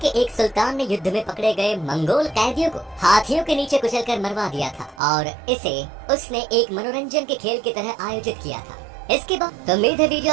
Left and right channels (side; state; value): left; drops out; at 5.0 s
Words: एक सुल्तान ने युद्ध में पकड़े गए मंगोल कैदियों को हाथियों के नीचे कुचलकर मरवा दिया था और इसे उसने एक मनोरंजन के खेल की तरह आयोजित किया था। इसके बाद तो उम्मीद है